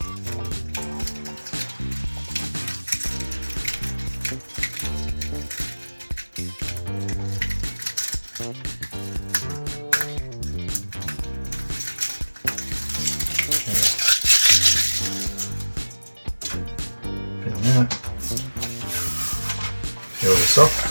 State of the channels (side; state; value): both; inverted; correlation -1.00